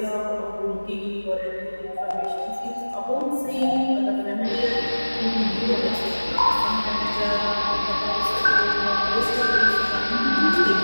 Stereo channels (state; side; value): inverted; both; correlation -1.00